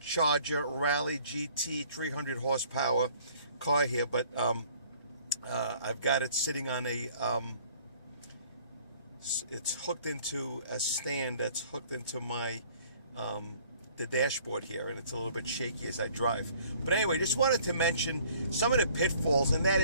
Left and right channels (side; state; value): both; inverted; correlation -0.56